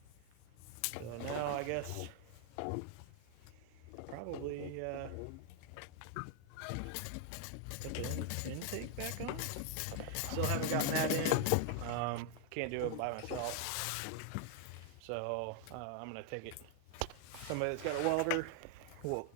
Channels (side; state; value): both; different; correlation 0.00